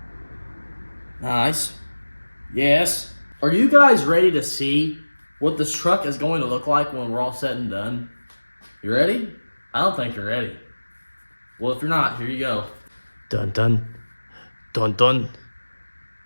Nice. Yes. Are you guys ready to see what this truck is going to look like when we're all said and done? You ready? I don't think you're ready. Well, if you're not, here you go. Dun dun. Dun dun.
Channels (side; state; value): both; inverted; correlation -1.00